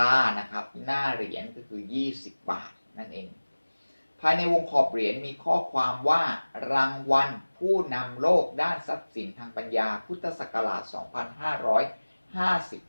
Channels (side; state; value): both; inverted; correlation -1.00